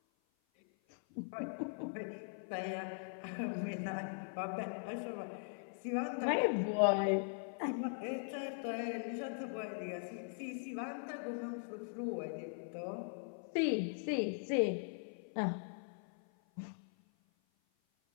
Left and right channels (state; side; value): silent; right; 51 dB below the other